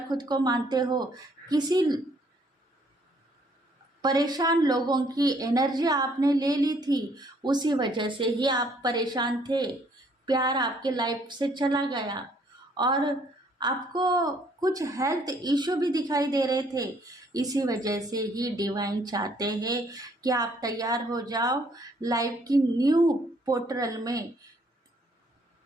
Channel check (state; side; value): normal; both; correlation 0.64